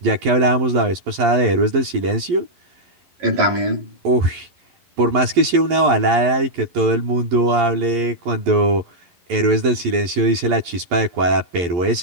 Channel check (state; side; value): late; left; 11 ms